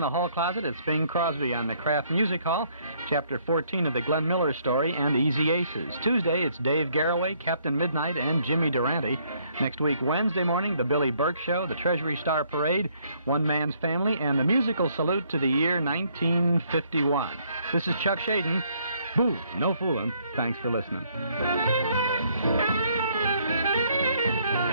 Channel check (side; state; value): both; inverted; correlation -0.67